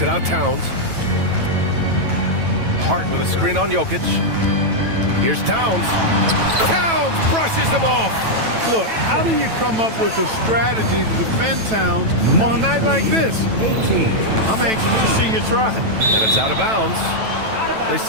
it out, Towns. Hart with a screen on Jokic. Here's Towns. Towns brushes him off. Look, how do you come up with a strategy to defend Towns on a night like this? I'm anxious to see you try. And it's out of bounds. They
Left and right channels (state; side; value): late; left; 9.1 ms